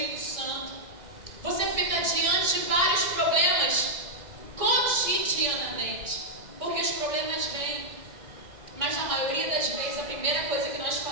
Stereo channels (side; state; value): left; late; 2.0 ms